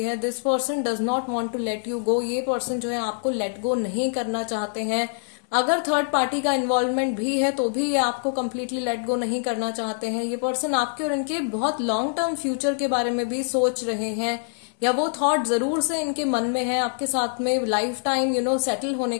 है। This person does not want to let you go. ये पर्सन जो है आपको लेट गो नहीं करना चाहते हैं। अगर थर्ड पार्टी का इन्वॉल्वमेंट भी है तो भी ये आपको कंप्लीटली लेट गो नहीं करना चाहते हैं। ये पर्सन आपके और इनके बहुत लॉन्ग टर्म फ्यूचर के बारे में भी सोच रहे हैं, या वो थॉट जरूर से इनके मन में है, आपके साथ में लाइफ टाइम सेटल होने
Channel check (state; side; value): silent; right; digital silence